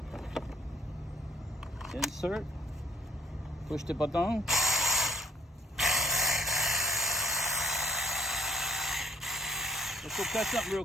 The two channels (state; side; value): normal; both; correlation 0.60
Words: Insert. Push the button. Let's go catch something real